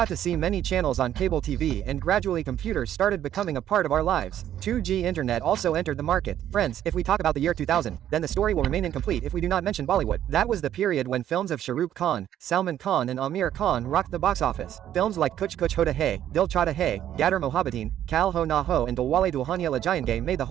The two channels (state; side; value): quieter; left; 11.2 dB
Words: to see many channels on cable TV and gradually computers started becoming a part of our lives. 2G internet also entered the market. Friends, if we talk about the year 2000, then the story will remain incomplete if we do not mention Bollywood. That was the period when films of Shah Rukh Khan, Salman Khan and Amir Khan rocked the box office. Films like Kuch Kuch Hota Hai, Dil Chahta Hai, Gadar Mohabbateen, Kal Ho Na Ho and Dilwale Dulhania Le Jayenge made the